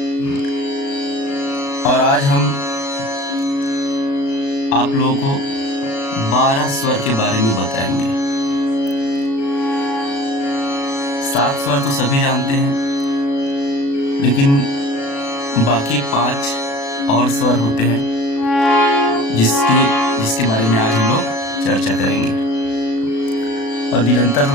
और आज हम आप लोगों को 12 स्वर के बारे में बताएंगे। 7 स्वर तो सभी जानते हैं, लेकिन बाकी 5 और स्वर होते हैं जिसके बारे में आज हम लोग चर्चा करेंगे। और निरंतर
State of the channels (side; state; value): right; late; 36 ms